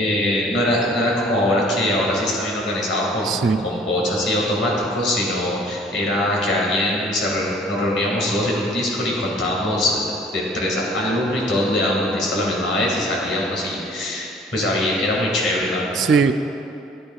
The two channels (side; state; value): both; normal; correlation 0.52